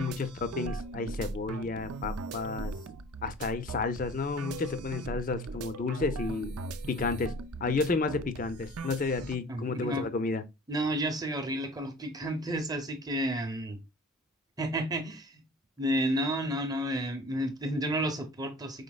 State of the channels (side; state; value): both; normal; correlation 0.44